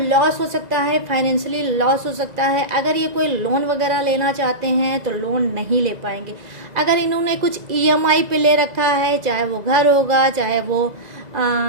हो सकता है, फाइनेंशियली लॉस हो सकता है। अगर ये कोई लोन वगैरह लेना चाहते हैं तो लोन नहीं ले पाएंगे। अगर इन्होंने कुछ ईएमआई पे ले रखा है, चाहे वो घर होगा, चाहे वो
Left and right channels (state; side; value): late; left; 2.0 ms